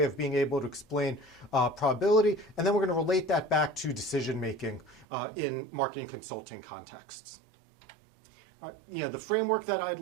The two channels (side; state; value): left; drops out; at 5.1 s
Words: of being able to explain probability. And then we're going to relate that back to decision making in marketing consulting contexts. The framework that I'd